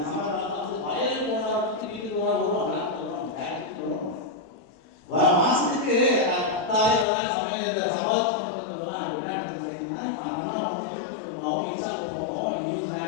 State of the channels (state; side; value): drops out; right; at 7.1 s